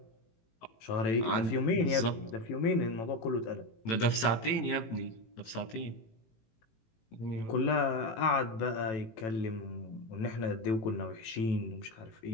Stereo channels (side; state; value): right; late; 18 ms